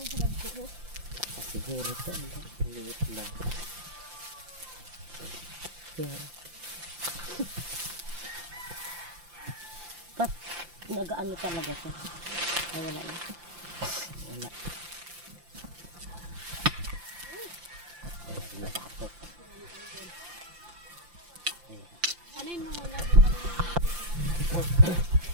Siguro ito. Maliit lang. Kaya... Ba't nag-ano talaga siya? Ay, wala na. Wala. Nabatok. Ano yun mo muna?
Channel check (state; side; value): late; left; 5.8 ms